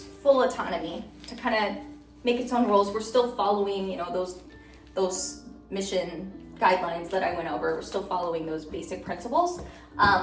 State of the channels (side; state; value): both; identical; correlation 1.00